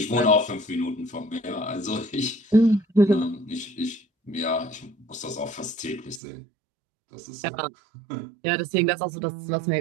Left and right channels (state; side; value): drops out; left; at 6.2 s